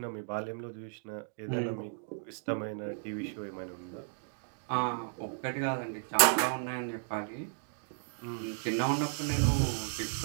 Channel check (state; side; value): silent; left; digital silence